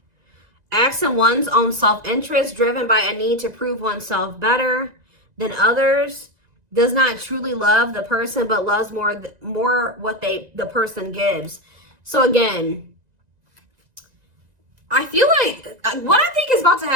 Acts in one's own self-interest, driven by a need to prove oneself better than others. Does not truly love the person, but loves more what the person gives. So again, I feel like what I think is about to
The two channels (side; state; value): left; late; 1.9 ms